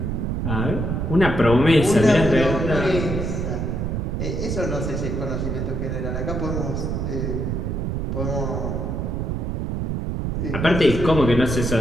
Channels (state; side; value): noise; right; rumble, 1 dB below the sound